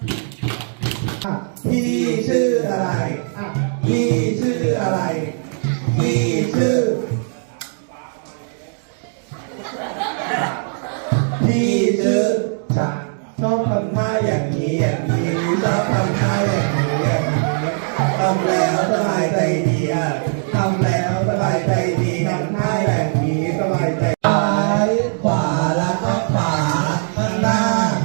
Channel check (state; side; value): silent; left; digital silence